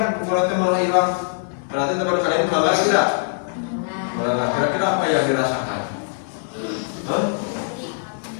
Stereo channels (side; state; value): right; silent; 64 dB below the other